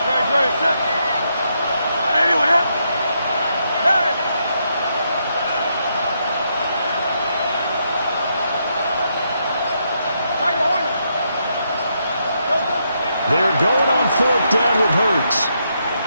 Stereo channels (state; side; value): inverted; both; correlation -0.79